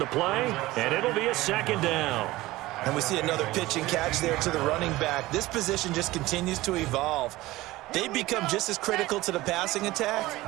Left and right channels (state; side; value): quieter; left; 18.2 dB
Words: play, and it'll be a 2nd down. And we see another pitch and catch there to the running back. This position just continues to evolve. They become just as critical to the passing attack